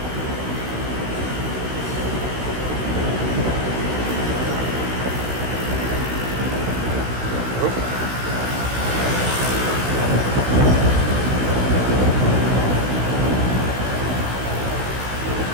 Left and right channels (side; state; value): left; late; 16 ms